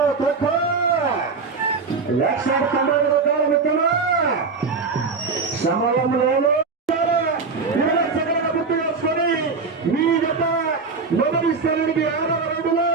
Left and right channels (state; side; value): quieter; left; 4.6 dB